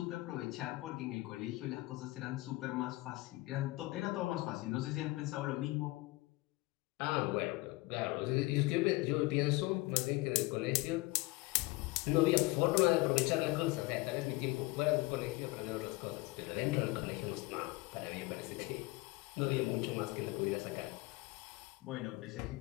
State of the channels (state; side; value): quieter; right; 21.7 dB